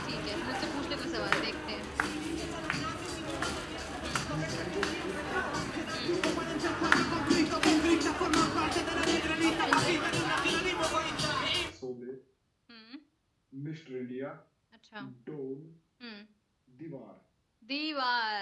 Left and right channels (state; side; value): identical; both; correlation 1.00